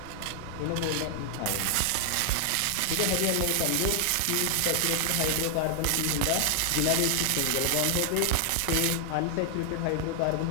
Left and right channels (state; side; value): different; both; correlation 0.00